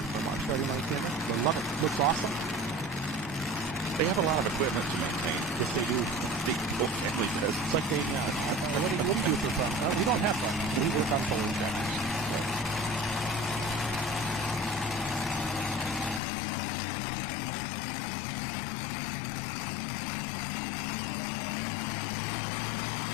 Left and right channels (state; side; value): drops out; right; at 16.2 s